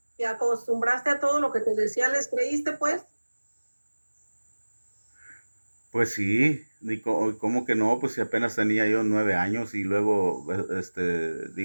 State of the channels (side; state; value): both; inverted; correlation -1.00